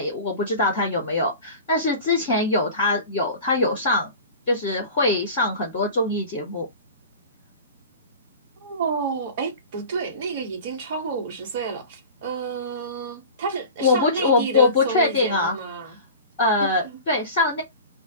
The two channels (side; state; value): both; inverted; correlation -0.36